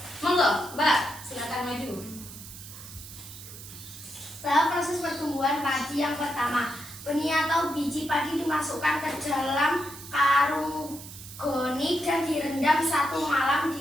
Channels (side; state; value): right; noise; hiss, 14 dB below the sound